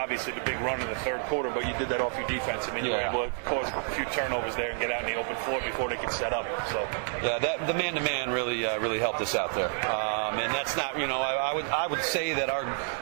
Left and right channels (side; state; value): left; silent; 57 dB below the other